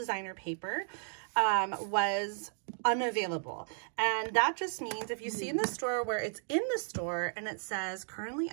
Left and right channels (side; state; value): left; silent; digital silence